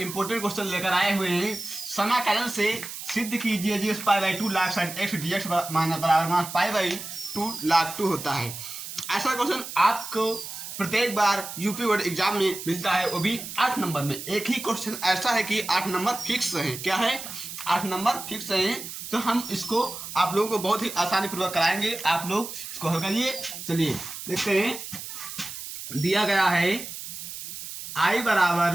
क्वेश्चन लेकर आए हुए हैं। समाकलन से सिद्ध कीजिए जी pi by 2 log sine X D X बराबर पाई बाई 2 लाख 2 होता है। ऐसा क्वेश्चन आपको प्रत्येक बार यूपी बोर्ड एग्जाम में मिलता है, वो भी 8 नंबर में। एक ही क्वेश्चन ऐसा है कि 8 नंबर फिक्स है। क्या है? 8 नंबर फिक्स है। तो हम इसको आप लोगों को बहुत ही आसानी पूर्वक कराएंगे। आप लोग इसको हल करिए। चलिए देखते हैं। दिया गया है आई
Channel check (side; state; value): right; noise; hiss, 9 dB below the sound